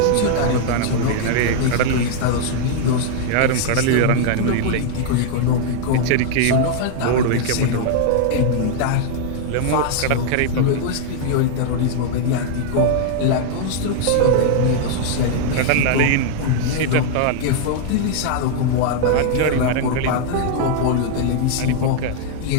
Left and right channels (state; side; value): different; both; correlation -0.01